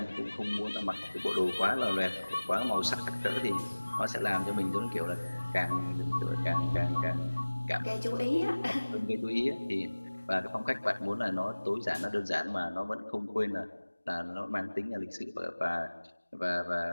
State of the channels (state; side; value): inverted; both; correlation -1.00